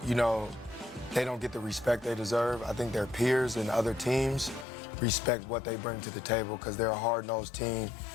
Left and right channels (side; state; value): right; drops out; at 4.7 s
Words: you know, they don't get the respect they deserve. I think their peers and other teams respect what they bring to the table because they're a hard-nosed team.